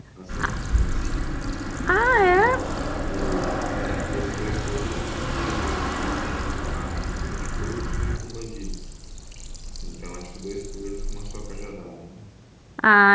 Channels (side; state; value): both; identical; correlation 1.00